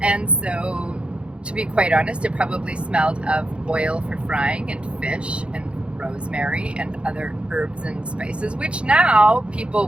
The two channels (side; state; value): left; late; 0.058 ms